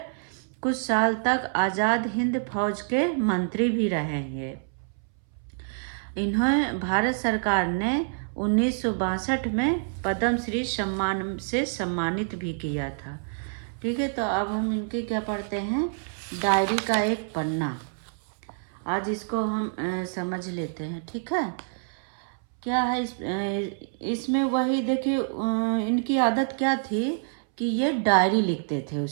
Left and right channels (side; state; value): left; silent; 60 dB below the other